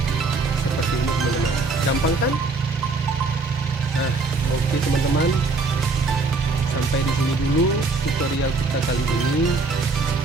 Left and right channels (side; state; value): left; quieter; 3.8 dB